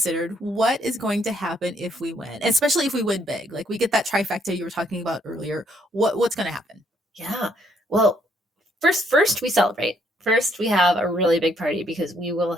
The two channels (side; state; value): both; normal; correlation 0.69